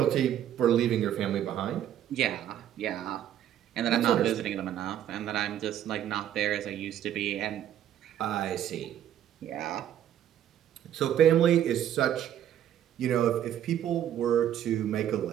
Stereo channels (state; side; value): quieter; left; 10.8 dB